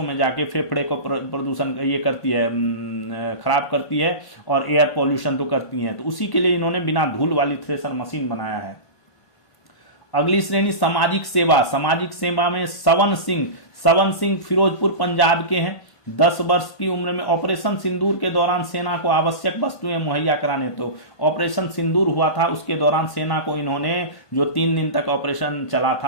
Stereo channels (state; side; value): late; right; 1.5 ms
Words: में जाके फेफड़े को प्रदूषण ये करती है, खराब करती है और एयर पॉल्यूशन तो करती है। तो उसी के लिए इन्होंने बिना धूल वाली थ्रेसर मशीन बनाया है। अगली श्रेणी सामाजिक सेवा। सामाजिक सेवा में सवन सिंह फिरोजपुर पंजाब के हैं, 10 वर्ष की उम्र में। ऑपरेशन सिंदूर के दौरान सेना को आवश्यक वस्तुएं मुहैया कराने, तो ऑपरेशन सिंदूर हुआ था उसके दौरान सेना को इन्होंने, जो 3 दिन तक ऑपरेशन चला